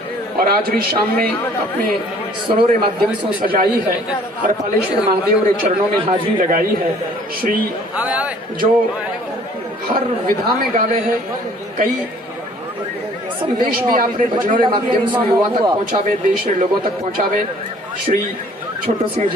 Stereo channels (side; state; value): both; normal; correlation 0.55